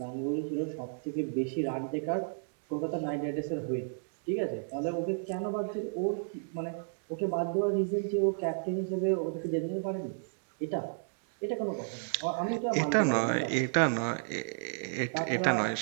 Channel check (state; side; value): silent; left; digital silence